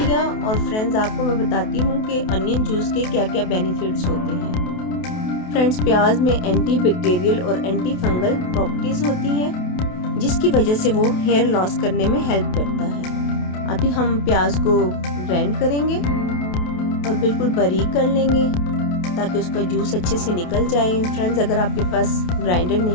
और फ्रेंड्स आपको मैं बताती हूँ कि अनियन जूस के क्या क्या बेनिफिट्स होते हैं। फ्रेंड्स, प्याज में एंटी बैक्टीरियल और एंटी फंगल प्रॉपर्टीज होती हैं, जिसकी वजह से वो हेयर लॉस करने में हेल्प करता है। अभी हम प्याज को ग्राइंड करेंगे और बिल्कुल बारीक कर लेंगे ताकि उसका जूस अच्छे से निकल जाए। फ्रेंड्स, अगर आपके पास ग्राइंडर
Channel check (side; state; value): right; late; 28 ms